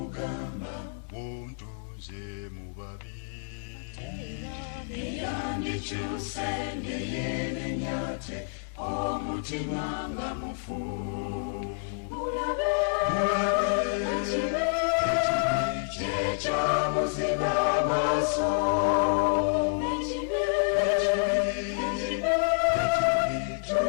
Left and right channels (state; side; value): silent; right; 59 dB below the other